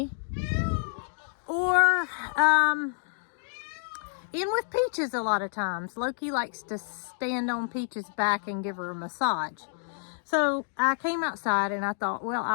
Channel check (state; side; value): silent; right; digital silence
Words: or in with Peaches a lot of times. Loki likes to stand on Peaches' back and give her a massage. So I came outside and I thought, well,